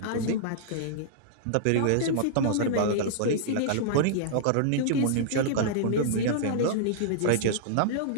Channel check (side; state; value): both; different; correlation -0.02